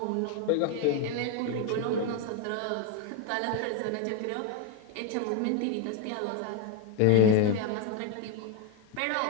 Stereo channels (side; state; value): both; different; correlation 0.01